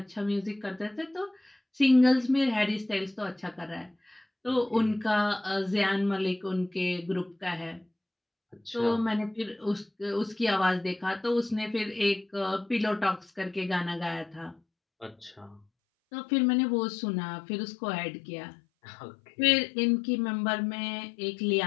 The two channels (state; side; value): drops out; right; at 15.7 s